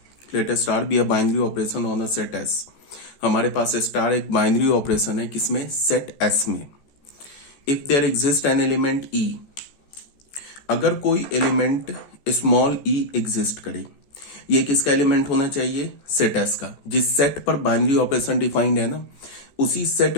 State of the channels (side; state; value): right; late; 14 ms